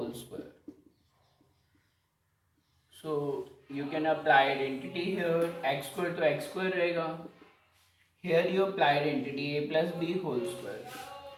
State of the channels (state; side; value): identical; both; correlation 1.00